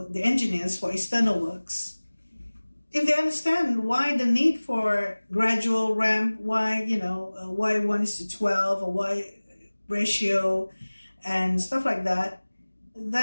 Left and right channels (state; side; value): inverted; both; correlation -1.00